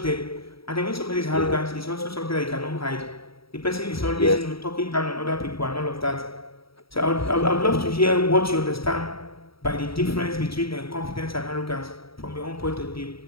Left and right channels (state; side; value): late; right; 0.75 ms